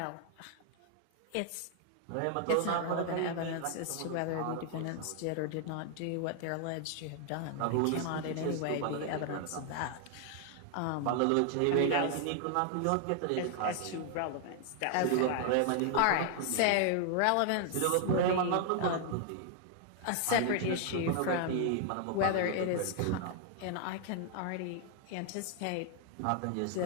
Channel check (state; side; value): different; both; correlation 0.00